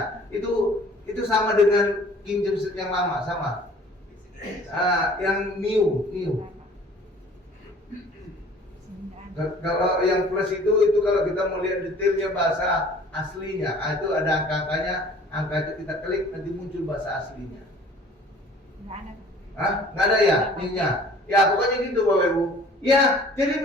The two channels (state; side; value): normal; both; correlation 0.51